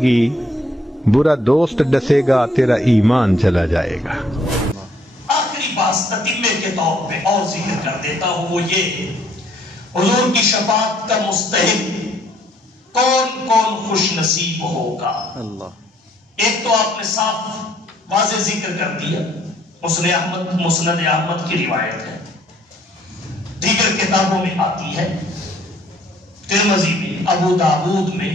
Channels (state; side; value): normal; both; correlation 0.65